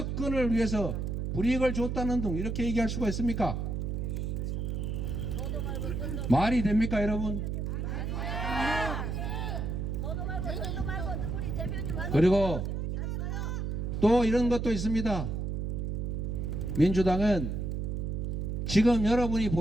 위해서 불이익을 줬다는 등 이렇게 얘기할 수가 있습니까? 말이 됩니까 여러분? 그리고 또 이런 것도 있습니다. 민주당은 지금 여러분이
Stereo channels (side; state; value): right; noise; hum, 2 dB below the sound